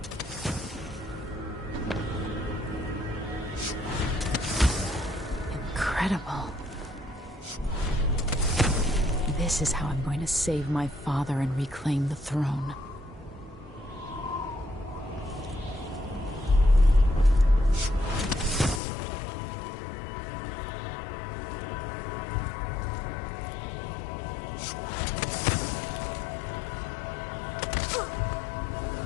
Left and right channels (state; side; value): drops out; right; at 18.8 s